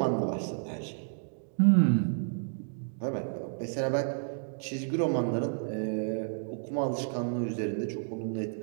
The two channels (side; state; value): left; silent; digital silence